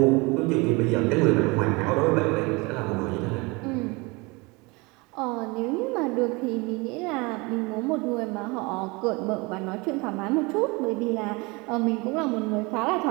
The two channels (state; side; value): quieter; left; 26.2 dB